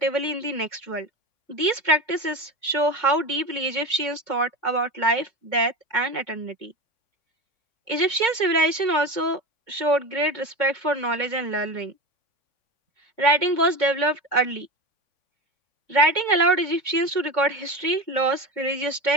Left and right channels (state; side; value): late; right; 3.5 ms